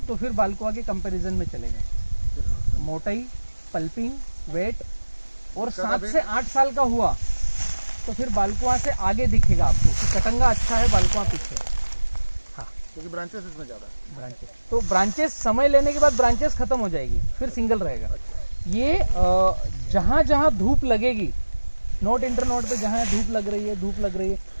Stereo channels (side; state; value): both; inverted; correlation -1.00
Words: तो फिर बालकुआ के कंपैरिजन में चलेगा। मोटाई, पल्पिंग, वेट, और 7 से 8 साल का हुआ तो फिर बालकुआ से आगे दिखेगा आपको कि कटंगा अच्छा है, बालकुआ पीछे। हाँ, क्योंकि ब्रांचेस इसमें ज़्यादा है। ब्रांचेस तो ब्रांचेस समय लेने के बाद ब्रांचेस खत्म हो जाएगी, फिर सिंगल रहेगा। ये जहाँ जहाँ धूप लगेगी, नोट इंटर नोट पे जहाँ धूप लग रही है